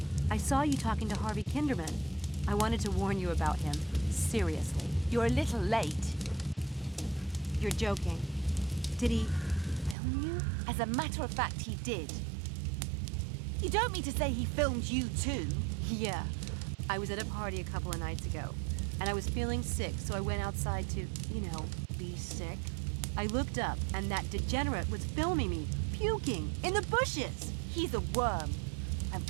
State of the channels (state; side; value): drops out; left; at 10.0 s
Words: I saw you talking to Harvey Kinderman. I wanted to warn you about him. Seriously. You're a little late. You're joking. Did he film you? As a matter of fact, he did. You don't mean to say he filmed you too? Yeah. I was at a party a couple of nights ago, and I was feeling sick, so I went outside to, be sick. I looked up, and that degenerate was filming me, puking, in the bushes! He's a worm. I'm